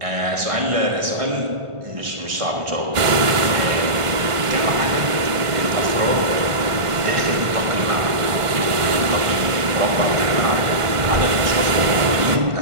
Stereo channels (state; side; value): late; left; 1.5 ms